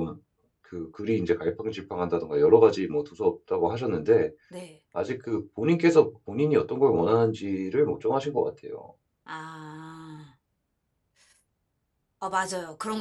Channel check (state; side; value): identical; both; correlation 1.00